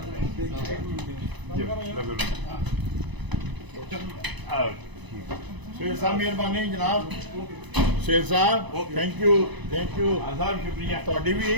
शेर साहब मेहरबानी जनाब। शेर साहब थैंक यू आजाद शुक्रिया। थोड़ी भी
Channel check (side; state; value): left; late; 1.0 ms